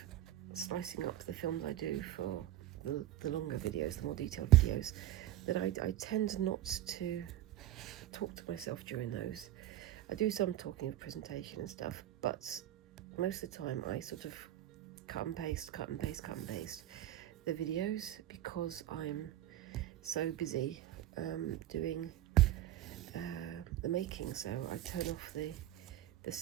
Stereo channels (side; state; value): left; quieter; 13.3 dB